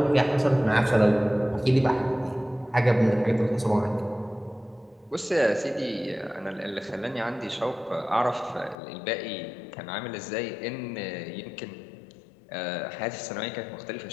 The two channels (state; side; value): drops out; right; at 8.8 s